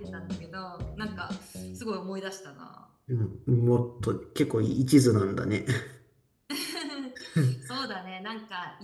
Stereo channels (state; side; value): identical; both; correlation 1.00